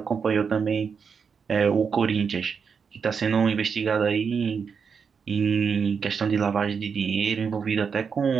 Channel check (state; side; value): quieter; left; 6.1 dB